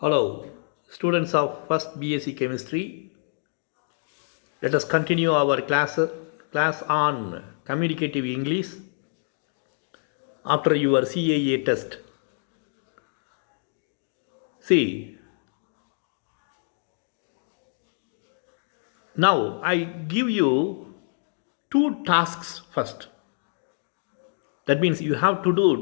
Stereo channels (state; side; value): silent; right; digital silence